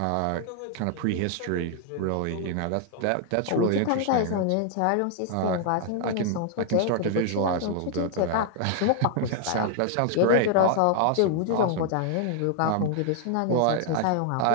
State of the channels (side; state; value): both; different; correlation 0.00